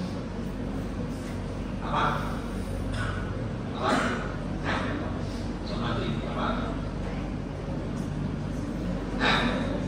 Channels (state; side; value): identical; both; correlation 1.00